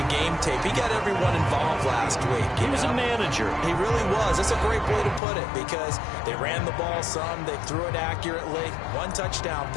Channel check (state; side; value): drops out; right; at 5.2 s